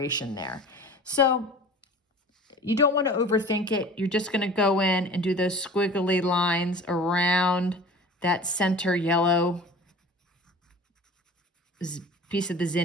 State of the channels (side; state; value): both; normal; correlation 0.41